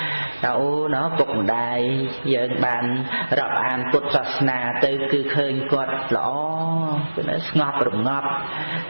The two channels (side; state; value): both; inverted; correlation -1.00